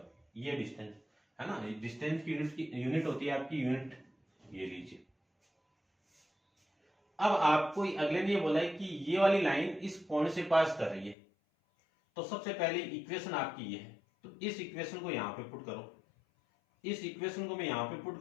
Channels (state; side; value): drops out; right; at 11.2 s